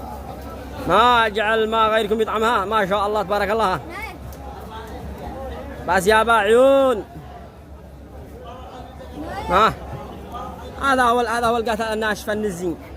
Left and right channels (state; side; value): identical; both; correlation 1.00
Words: ما جعل الماء غيركم يطعمها. ما شاء الله تبارك الله. بس يا عيون. ها هذا هو القتل الناشفه النزين.